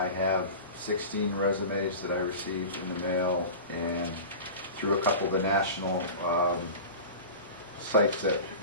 have 16 resumes that I received in the mail and through a couple of the national sites that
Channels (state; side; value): inverted; both; correlation -0.33